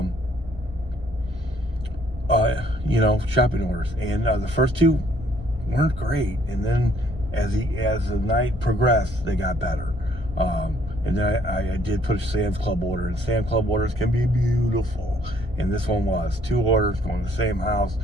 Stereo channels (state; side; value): normal; both; correlation 0.64